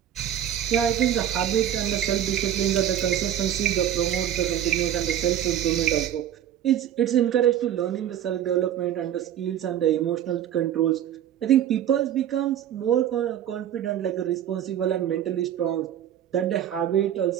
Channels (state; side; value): quieter; left; 10.7 dB